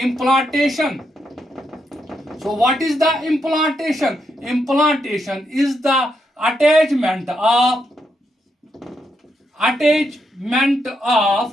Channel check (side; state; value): both; normal; correlation 0.81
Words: So what is the implantation? Implantation is the attachment of